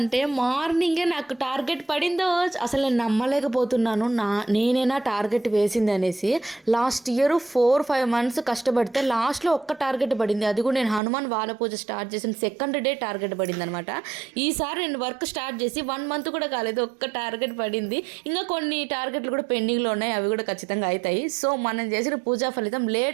మార్నింగే నాకు టార్గెట్ పడిందో అసలు నేను నమ్మలేకపోతున్నాను. నేనైనా టార్గెట్ వేసింది అనేసి. లాస్ట్ ఇయర్ 4-5 months కష్టపడితే లాస్ట్లో ఒక్క టార్గెట్ పడింది. అది కూడా నేను హనుమాన్ వాల పూజ స్టార్ట్ చేసిన సెకండ్ డే టార్గెట్ పడింది అనమాట. ఈసారి నేను వర్క్ స్టార్ట్ చేసి 1 month కూడా కాలేదు, ఒక్క టార్గెట్ పడింది. ఇంకా కొన్ని టార్గెట్లు కూడా పెండింగ్లో ఉన్నాయి, అవి కూడా ఖచ్చితంగా అవుతాయి. సో మనం చేసిన పూజా ఫలితం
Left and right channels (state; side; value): drops out; left; at 11.0 s